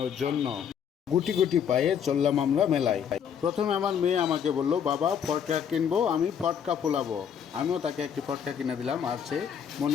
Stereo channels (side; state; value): right; quieter; 8.0 dB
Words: জন্য। গুটি গুটি পায়ে চললাম আমরা মেলায়। প্রথমে আমার মেয়ে আমাকে বলল, বাবা ফটকা কিনবো, আমি ফটকা ফোলাবো। আমিও তাকে একটি ফটকা কিনে দিলাম, আর সে